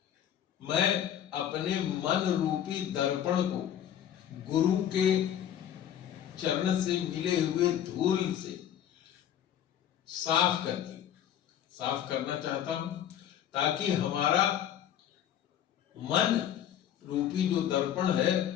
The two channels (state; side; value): quieter; right; 10.3 dB